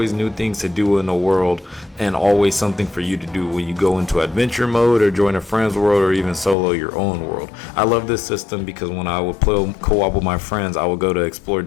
new things to do in the world, and always something for you to do when you go into adventure mode or join a friend's world or even solo your own world. I love this system because when I would play co-op with my friends, I would go to explore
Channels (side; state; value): right; drops out; at 6.6 s